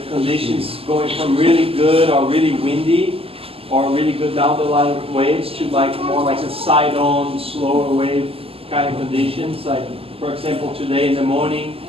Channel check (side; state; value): left; late; 0.28 ms